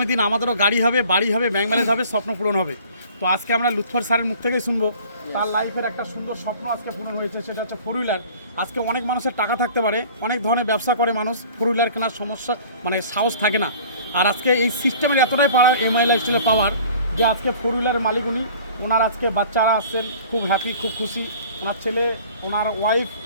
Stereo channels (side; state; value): both; inverted; correlation -0.48